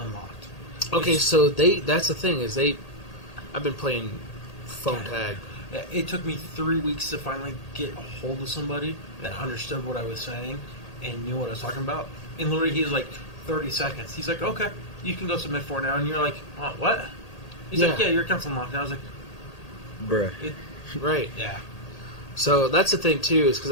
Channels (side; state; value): right; late; 1.8 ms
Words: unlocked. Okay, so that's the thing, is I've been playing phone tag. It took me 3 weeks to finally get a hold of somebody that understood what I was saying and knew what I was talking about. And literally, he was like, 30 seconds. He's like, okay, you can go submit for it now. And you're like, what? He's like, yeah, your account's unlocked. And I was like, bruh. Right. Yeah. So that's the thing, too, is because